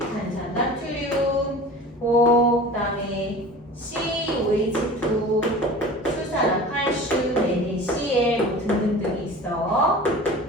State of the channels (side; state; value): both; normal; correlation 0.38